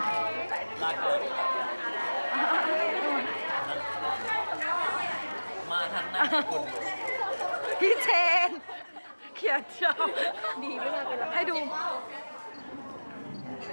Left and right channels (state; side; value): inverted; both; correlation -1.00